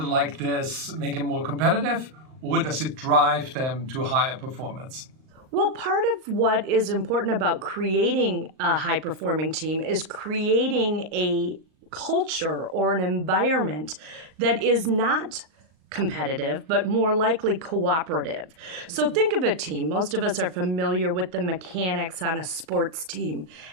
this make them more competitive, or does it drive them to higher performance? Well, part of what is important about creating a high-performing team is creating a culture or an environment that is not competitive, but more likely cooperative. So think of a team. Most of us are familiar with the mechanics on a sports team.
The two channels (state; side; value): late; left; 38 ms